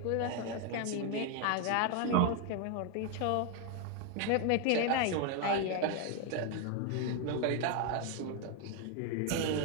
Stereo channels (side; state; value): both; different; correlation 0.01